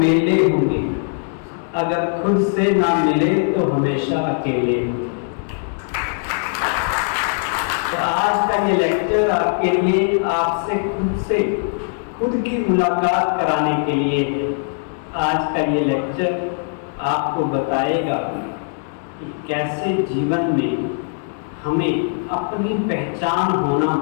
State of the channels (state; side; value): silent; right; 65 dB below the other